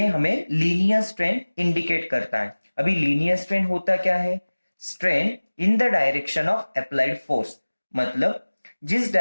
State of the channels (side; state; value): both; inverted; correlation -1.00